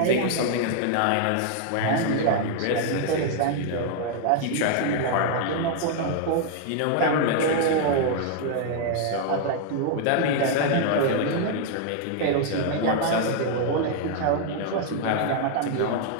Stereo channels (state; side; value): different; both; correlation 0.00